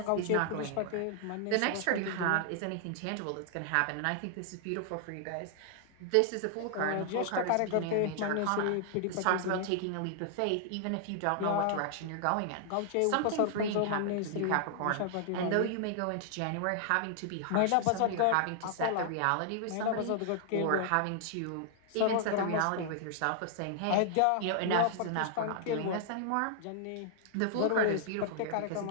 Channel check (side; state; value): both; different; correlation -0.01